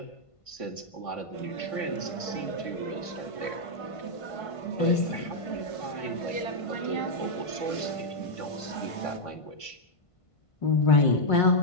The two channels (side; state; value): right; late; 1.5 ms